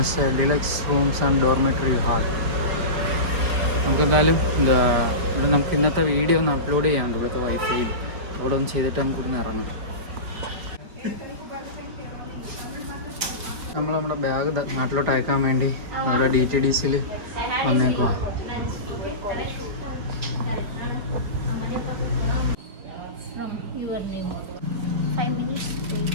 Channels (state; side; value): late; left; 4.7 ms